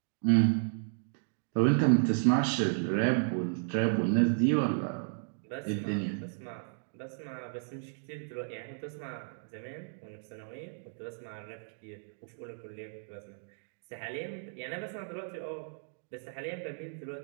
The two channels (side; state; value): left; silent; digital silence